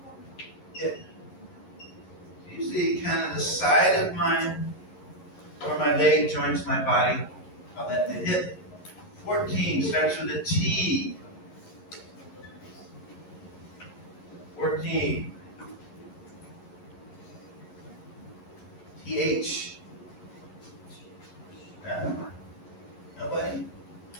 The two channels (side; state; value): right; late; 11 ms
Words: Hip. Usually kind of the side of where my leg joins my body. Call that the hip. 14. 13 starts with a T. 14. TH. No? Nobody?